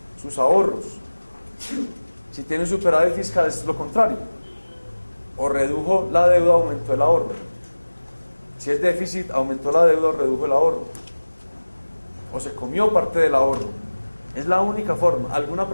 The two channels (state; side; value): inverted; both; correlation -1.00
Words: sus ahorros. Si tiene un superávit fiscal es lo contrario, o redujo la deuda, aumentó el ahorro. Si es déficit, aumentó la deuda o redujo el ahorro, o se comió parte del ahorro. Es la única forma. ¿Alguna